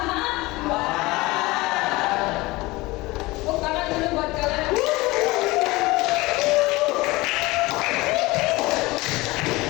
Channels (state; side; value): quieter; right; 21.3 dB